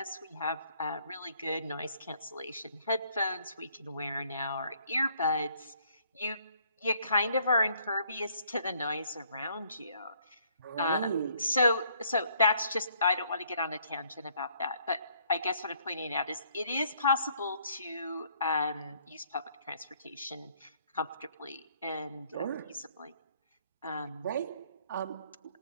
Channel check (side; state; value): both; inverted; correlation -0.65